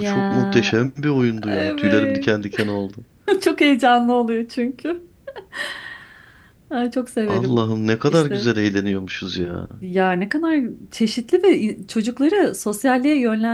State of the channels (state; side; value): identical; both; correlation 1.00